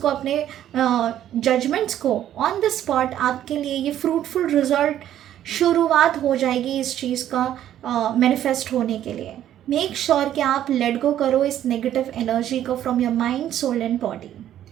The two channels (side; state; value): left; quieter; 11.5 dB